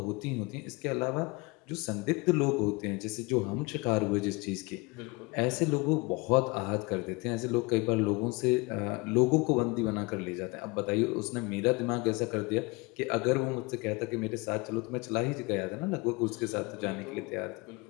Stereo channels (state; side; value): quieter; right; 26.4 dB